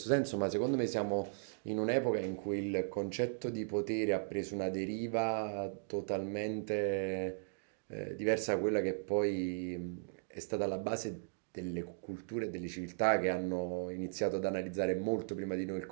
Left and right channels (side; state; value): left; silent; digital silence